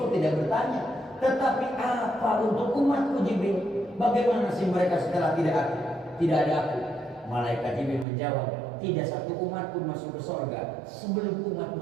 tidak bertanya, tetapi apa untuk umatku Jibril? Bagaimana sih mereka setelah tidak ada aku? Malaikat Jibril menjawab, tidak satu umat pun masuk ke surga sebelum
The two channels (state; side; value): drops out; left; at 8.1 s